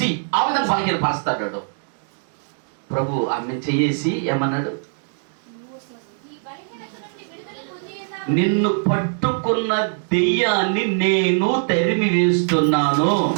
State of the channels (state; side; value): silent; left; digital silence